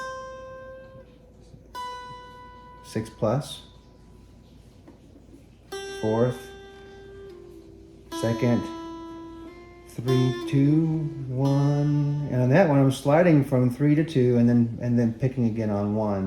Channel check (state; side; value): identical; both; correlation 1.00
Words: 6 plus, fourth, second, 3, 2, 1, and on that one I'm sliding from 3 to 2 and then picking again on